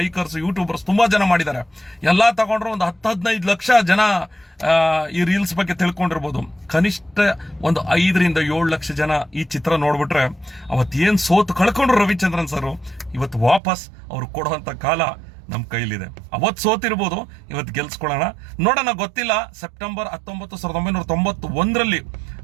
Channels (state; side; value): drops out; left; at 13.6 s